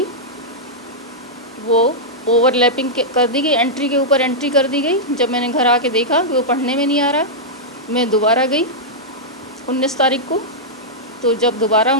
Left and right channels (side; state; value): both; normal; correlation -0.09